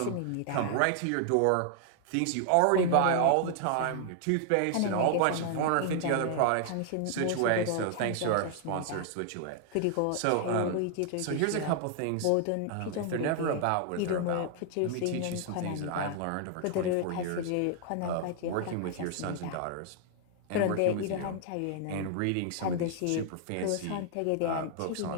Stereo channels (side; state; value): both; different; correlation 0.00